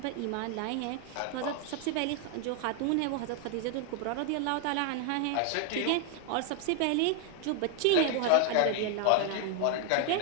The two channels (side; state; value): both; different; correlation 0.00